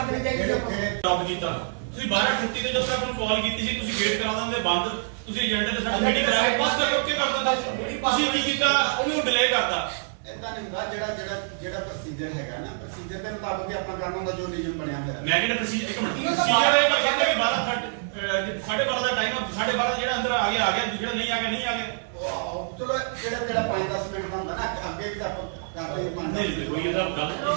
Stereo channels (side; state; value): left; silent; 61 dB below the other